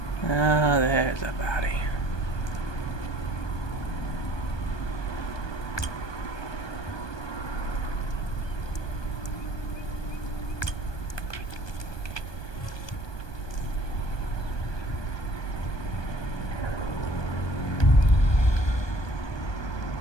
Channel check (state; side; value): late; right; 1.2 ms